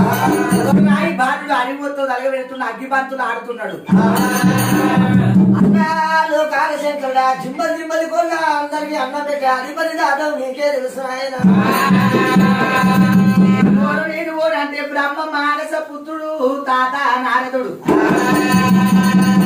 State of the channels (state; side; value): identical; both; correlation 1.00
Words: బాలుడు అరిమొత్తో తలగబెడుతున్న అగ్గిపంతులు ఆడుతున్నాడు. అన్నాలు కాలశంకరుడా జిమ్మలు జిమ్మలు కొన్నా అందరికి అన్నం పెట్టే అధిపతి దాదం నీకే తెలుసు ఆయన. నేను ఓడు అంటే బ్రహ్మ మానస పుత్రుడు తాత నారదుడు.